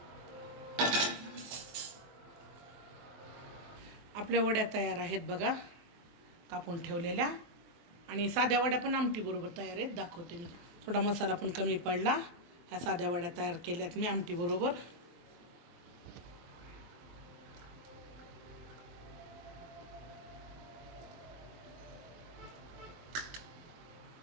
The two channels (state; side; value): late; left; 23 ms